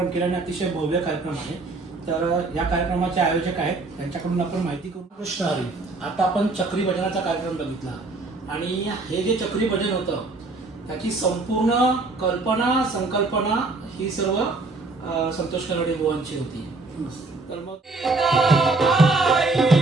केल्याने अतिशय भव्य कार्यक्रम आहे. तर या कार्यक्रमाचे आयोजक आहेत, त्यांच्याकडून आपण माहिती करू. कृष्ण हरी. आता आपण चक्री भजनाचा कार्यक्रम बघितला आणि हे जे चक्री भजन होतं त्याची संपूर्ण कल्पना संकल्पना ही सर्व संतोष कलडे बुवांची होती. तर मग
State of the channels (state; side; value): quieter; left; 3.5 dB